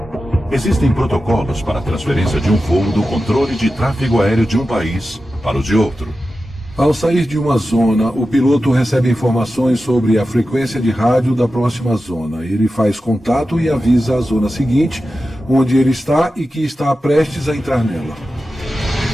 Existem protocolos para a transferência de um voo do controle de tráfego aéreo de um país para o de outro. Ao sair de uma zona, o piloto recebe informações sobre a frequência de rádio da próxima zona. Ele faz contato e avisa a zona seguinte, onde ele está e que está prestes a entrar nela.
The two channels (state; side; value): normal; both; correlation 0.92